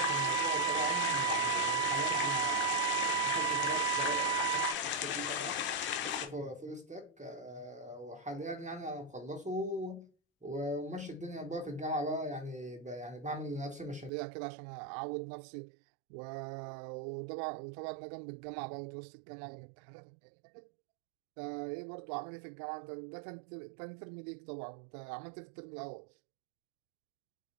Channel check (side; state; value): left; drops out; at 14.1 s